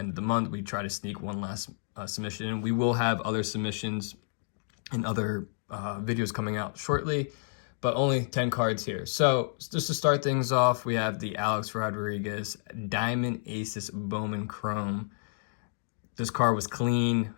of the month, we try to sneak one last submission in. We will have other submissions and other videos coming out shortly, but only 10 cards here. So just to start things off, we have the Alex Rodriguez Diamond Aces Bowman Chrome. This card was clean,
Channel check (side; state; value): right; silent; digital silence